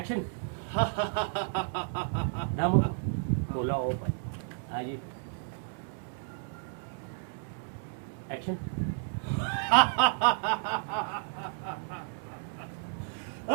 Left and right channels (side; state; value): left; silent; digital silence